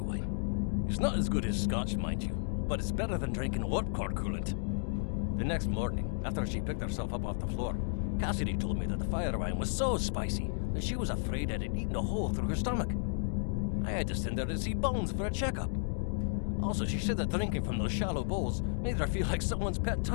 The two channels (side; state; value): right; silent; digital silence